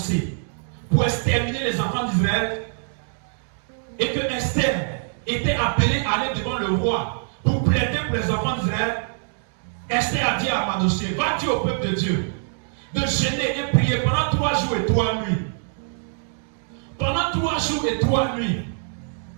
pour exterminer les enfants d'Israël et que Esther était appelée à aller devant le roi pour plaider pour les enfants d'Israël, Esther a dit à Mardochée, va dire au peuple de Dieu de jeûner et prier pendant 3 jours et 3 nuits. Pendant 3 jours et 3 nuits.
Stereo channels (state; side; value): silent; left; digital silence